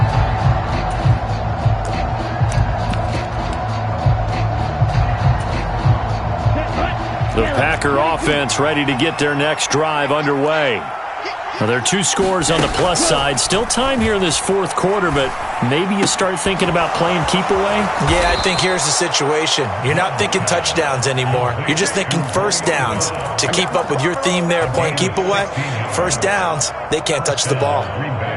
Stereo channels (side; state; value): both; identical; correlation 1.00